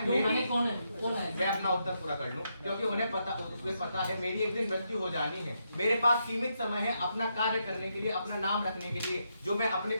क्यों मेरी- कौन है? कौन है? मैं अपना उत्तर पूरा कर लूं। क्योंकि उन्हें पता है मेरी एक दिन मृत्यु हो जानी है। मेरे पास सीमित समय है अपना कार्य करने के लिए, अपना नाम रखने के लिए, जो मैं अपने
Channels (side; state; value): both; inverted; correlation -0.81